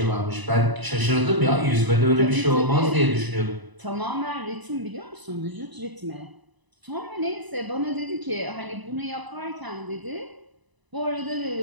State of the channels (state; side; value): late; left; 1.0 ms